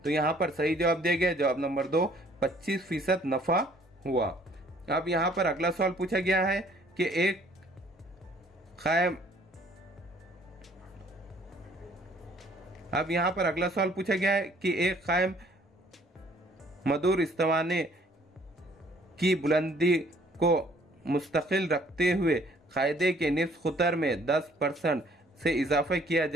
तो यहाँ पर सही जवाब दिया गया जवाब नंबर 2, 25% नफ़ा हुआ। अब यहाँ पर अगला सवाल पूछा गया है कि एक कायम मदूर इस्तिवाने की बुलंदी को मुस्तकिल रखते हुए कायदे के निफ्स खुतर में 10% से इजाफा किया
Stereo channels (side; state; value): both; normal; correlation 0.59